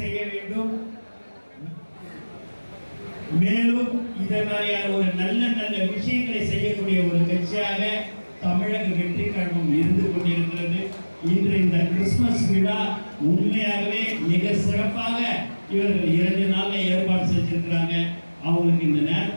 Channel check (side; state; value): both; inverted; correlation -1.00